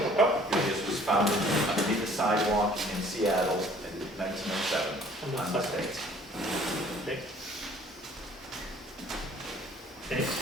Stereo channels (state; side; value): normal; both; correlation 0.54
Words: Oh, This was founded underneath a sidewalk in Seattle in 1907 on this date. okay. Okay,